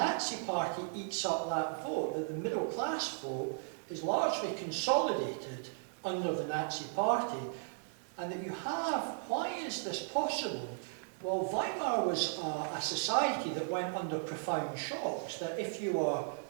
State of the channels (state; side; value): silent; left; digital silence